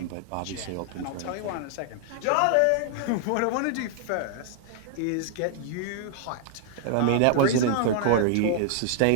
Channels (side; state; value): both; different; correlation 0.00